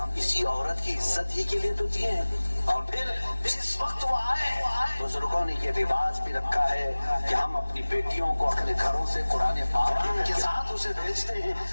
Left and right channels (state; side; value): inverted; both; correlation -1.00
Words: اسی عورت کی عزت ہی کے لیے تو دیے ہیں۔ اور پھر جس وقت وہ آئے، بزرگوں نے یہ رواج بھی رکھا ہے کہ ہم اپنی بیٹیوں کو اپنے گھروں سے قرآن پاک کے ساتھ اسے بھیجتے ہیں،